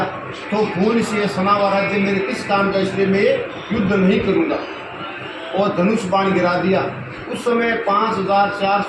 तो खून से सना हुआ राज्य मेरे किस काम का, इसलिए मैं युद्ध नहीं करूंगा। और धनुष बाण गिरा दिया। उस समय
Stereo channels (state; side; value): identical; both; correlation 1.00